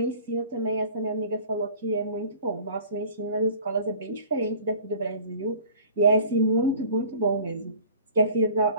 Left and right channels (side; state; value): both; inverted; correlation -0.46